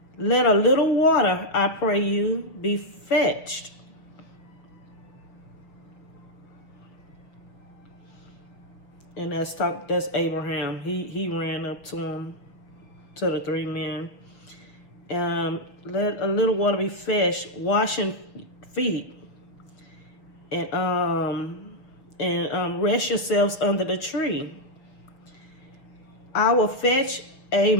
Let a little water, I pray you, be fetched. And that's Abraham. He ran up to him, to the 3 men. Let a little water be fetched, washing feet, and rest yourselves under the tree. I will fetch a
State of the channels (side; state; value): right; late; 6.4 ms